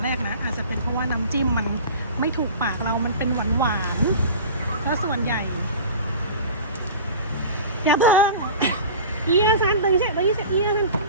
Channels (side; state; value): both; inverted; correlation -0.37